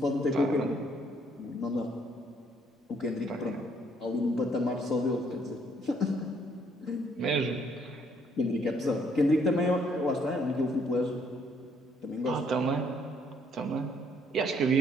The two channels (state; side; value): normal; both; correlation 0.67